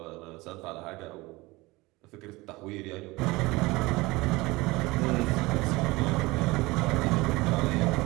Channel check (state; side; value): quieter; left; 21.8 dB